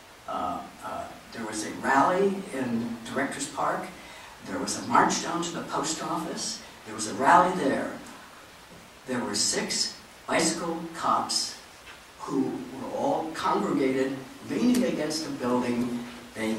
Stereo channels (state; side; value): identical; both; correlation 1.00